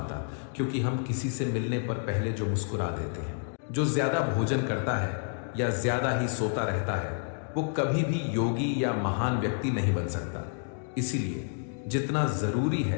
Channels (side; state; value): right; silent; digital silence